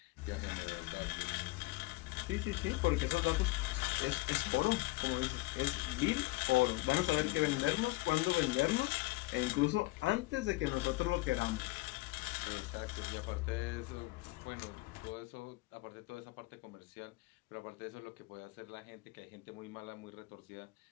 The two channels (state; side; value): quieter; right; 21.5 dB